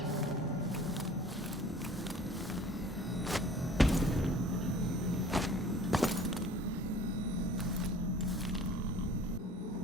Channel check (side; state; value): both; normal; correlation 0.48